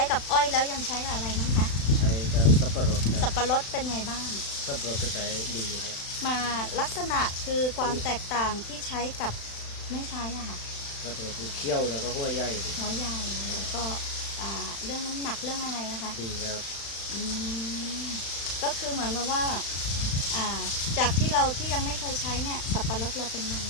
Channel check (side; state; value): right; late; 35 ms